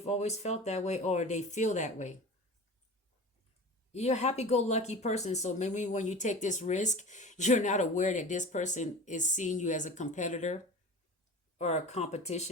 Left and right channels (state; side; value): normal; both; correlation 0.35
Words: always felt that way, or they feel that way. You're a happy-go-lucky person, so maybe when you take this risk, you're not aware that this person is seeing you as a competitor or a